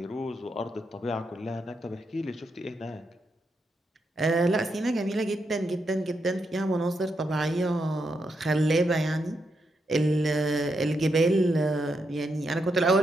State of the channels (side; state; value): both; normal; correlation 0.82